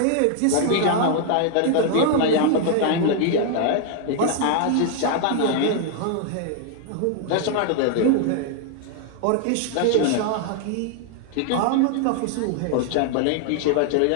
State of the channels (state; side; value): different; both; correlation 0.00